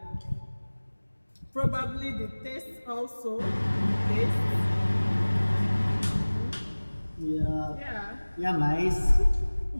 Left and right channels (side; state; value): both; inverted; correlation -1.00